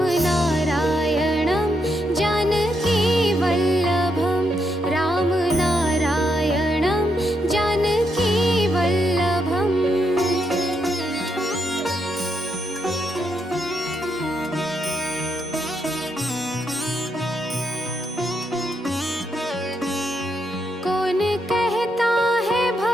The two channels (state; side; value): normal; both; correlation 0.79